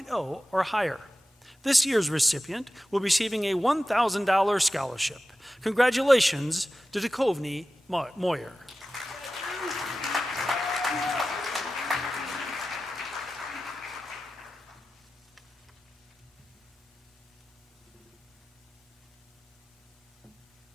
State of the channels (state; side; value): normal; both; correlation 0.94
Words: or higher. This year's recipient will be receiving a $1,000 scholarship. Congratulations to Duchovny Moyer.